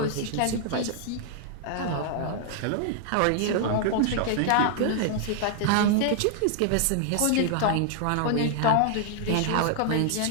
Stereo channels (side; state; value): both; different; correlation -0.01